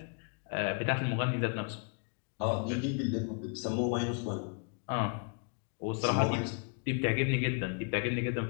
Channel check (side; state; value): right; quieter; 39.4 dB